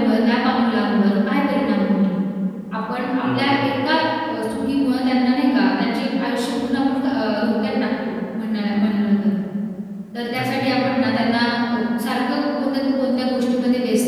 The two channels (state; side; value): identical; both; correlation 1.00